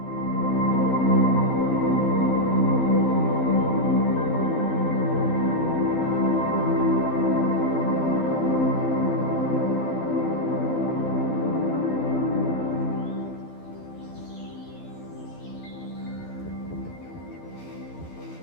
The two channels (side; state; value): right; late; 12 ms